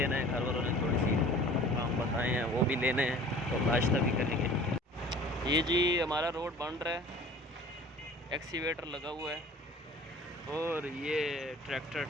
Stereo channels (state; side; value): normal; both; correlation 0.46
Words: है। घर वालों ने थोड़ी सी काम बताए हैं, वो भी लेने हैं, तो नाश्ता भी करेंगे। ये जी हमारा रोड बन रहा है, एक्सीवेटर लगा हुआ है और ये ट्रैक्टर